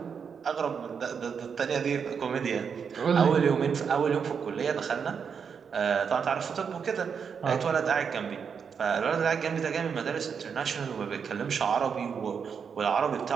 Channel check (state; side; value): quieter; left; 6.6 dB